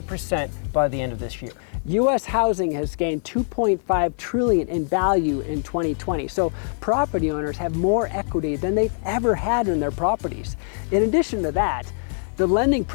by the end of this year. U.S. housing has gained $2.5 trillion in value in 2020, so property owners have more equity than they've ever had in their properties. In addition to that, the lending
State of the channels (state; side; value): silent; right; 57 dB below the other